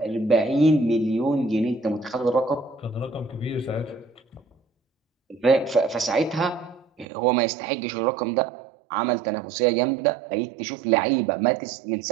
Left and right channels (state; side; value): drops out; left; at 7.1 s